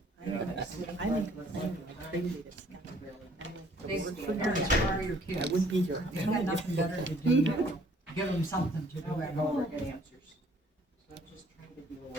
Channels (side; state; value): both; normal; correlation 0.60